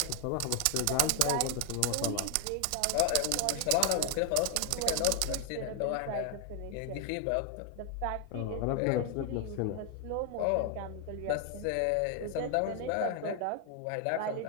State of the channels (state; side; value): different; both; correlation 0.00